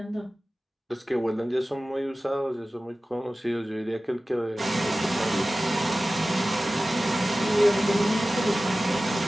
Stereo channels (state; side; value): normal; both; correlation 0.96